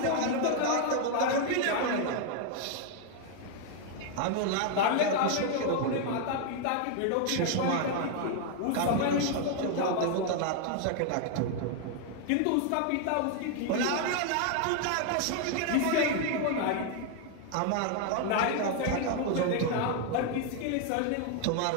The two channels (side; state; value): both; different; correlation 0.00